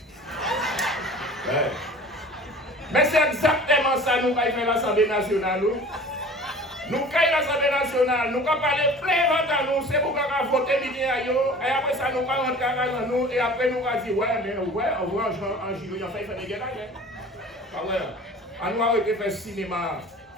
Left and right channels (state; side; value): normal; both; correlation 0.43